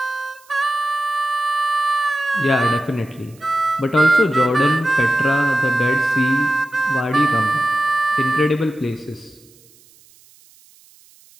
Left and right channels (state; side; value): noise; right; hiss, 28 dB below the sound